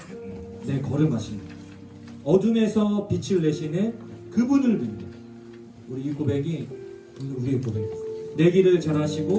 내 걸음하시는 어둠에서 빛을 내시는 그분을 믿는 우리 이 고백이 우리의 고백입니다. 내 길을 잘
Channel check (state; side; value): identical; both; correlation 1.00